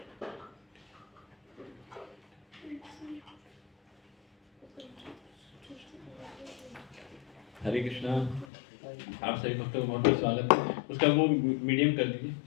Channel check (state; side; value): drops out; right; at 8.5 s